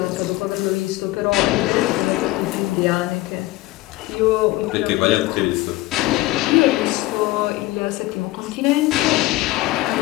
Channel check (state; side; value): quieter; right; 18.7 dB